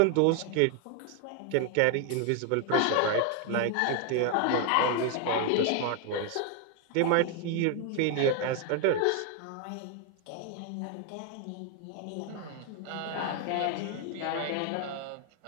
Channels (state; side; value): different; both; correlation 0.01